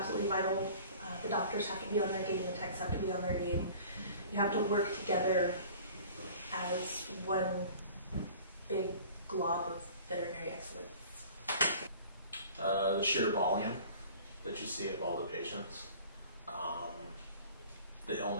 vital. The doctors have to be on their game, the techs have to be on their game. You have to work together as one big glob of veterinary excellence. The sheer volume that you see of all the patients, the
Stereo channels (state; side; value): inverted; both; correlation -0.46